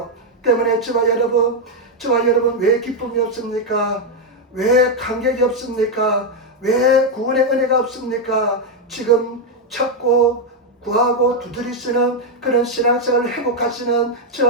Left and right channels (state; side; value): normal; both; correlation 0.02